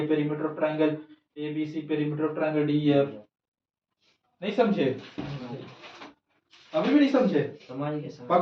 perimeter of triangle ABC perimeter of triangle DEF। नहीं समझे? अभी भी नहीं समझे?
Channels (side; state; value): both; identical; correlation 1.00